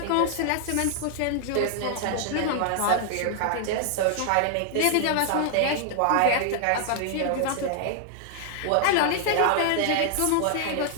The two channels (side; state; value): both; different; correlation 0.00